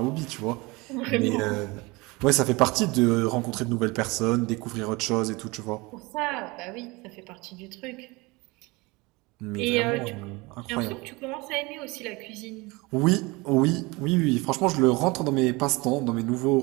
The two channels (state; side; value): quieter; left; 24.3 dB